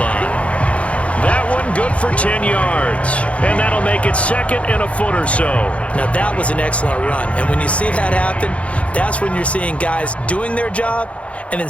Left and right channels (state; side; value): late; right; 0.063 ms